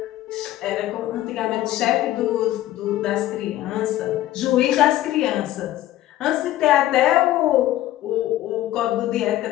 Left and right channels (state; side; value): quieter; right; 14.5 dB